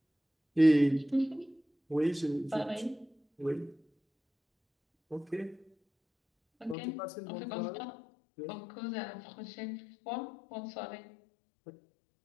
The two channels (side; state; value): right; drops out; at 6.8 s